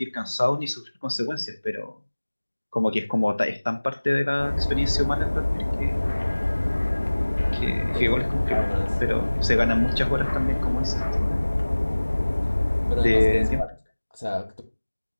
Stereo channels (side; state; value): both; inverted; correlation -1.00